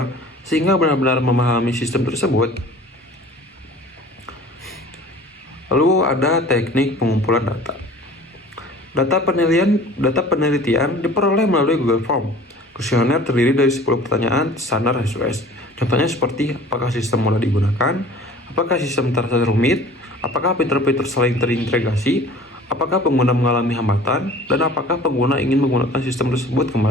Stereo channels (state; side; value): normal; both; correlation 0.46